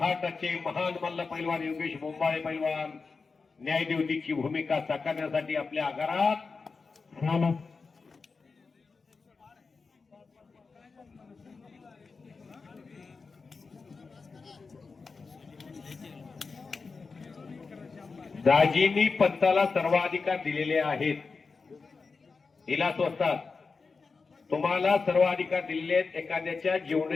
महान मल्ल पैलवान योगेश मुंबाळे पैलवान न्यायदेवतेची भूमिका साकारण्यासाठी आपल्या आगारात दाजींनी पंताला सर्वाधिकार दिलेले आहेत. हिला स्वस्तात तुम्हाला सर्व अधिकार दिलेले आहेत. एखाद्याच्या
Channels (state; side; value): quieter; right; 4.5 dB